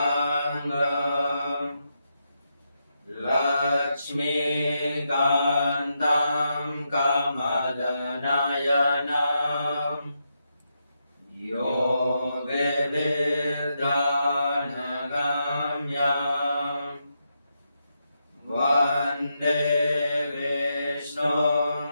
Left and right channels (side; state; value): both; inverted; correlation -0.83